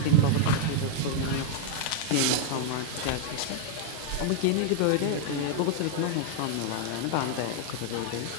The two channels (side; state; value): both; different; correlation 0.00